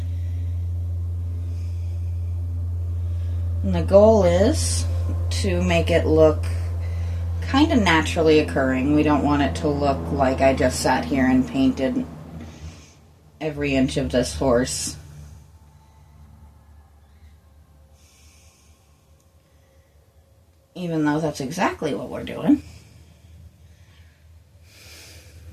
the goal is to make it look kind of naturally occurring. We don't want it to look like I just sat here and painted every inch of this horse. Even though that's exactly what we're doing.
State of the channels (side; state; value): both; identical; correlation 1.00